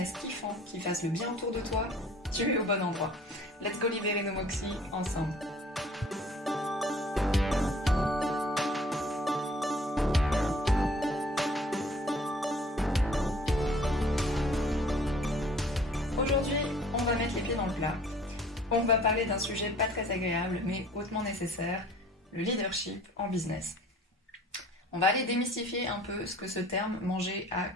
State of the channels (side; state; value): both; normal; correlation 0.52